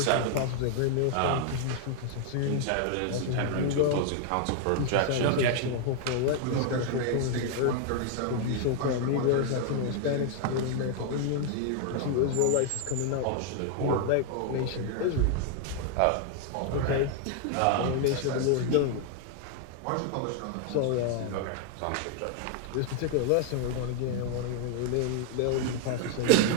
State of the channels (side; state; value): both; different; correlation 0.00